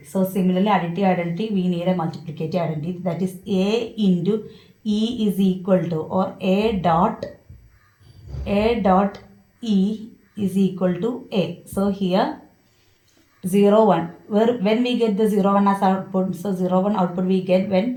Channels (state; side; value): identical; both; correlation 1.00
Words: So similarly, additive identity, we need a multiplicative identity. That is A into E is equal to, or A dot E is equal to A. So here 0, 1. When we get the 0, 1 as output, so 0, 1 output we get